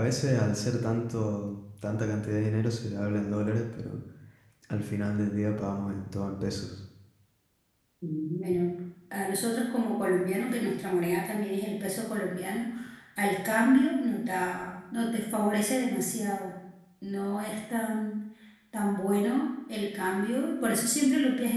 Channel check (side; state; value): both; identical; correlation 1.00